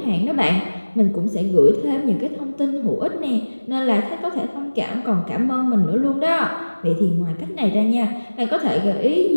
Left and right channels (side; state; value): both; inverted; correlation -1.00